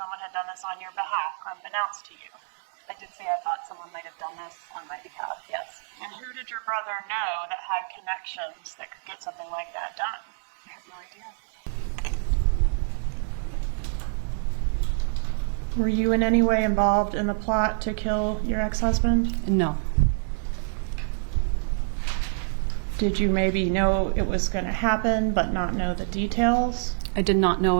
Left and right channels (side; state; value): left; silent; digital silence